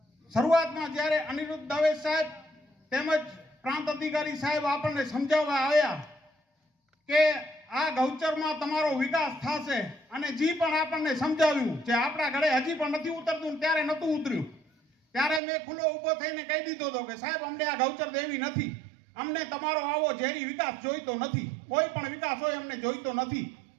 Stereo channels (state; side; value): drops out; left; at 15.4 s